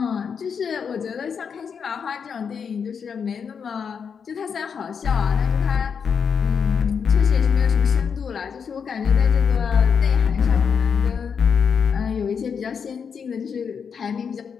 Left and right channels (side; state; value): right; quieter; 6.6 dB